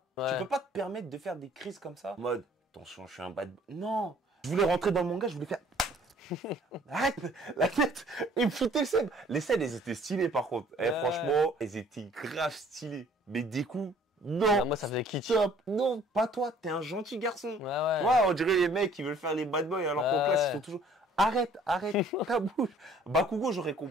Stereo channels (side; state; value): both; normal; correlation 0.56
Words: Ouais. tu peux pas te permettre de faire des crises comme ça. Mode, attention, je suis un bad boy. Non, Je voulais rentrer dans le manga, je voulais faire... Arrête la tête. Il me foutait le seum. Les scènes, elles étaient stylées par contre. Franchement, elles étaient grave stylées. Mais des coups, non. Ah, moi, ça faisait kitsch. Stop. Non, pas toi. T'es un gentil garçon. Ouais. Ouais, on dirait les mecs qui veulent faire les bad boys alors qu'en classe, ils sont toujours... Arrête ta bouche. Bakugo, j'aurais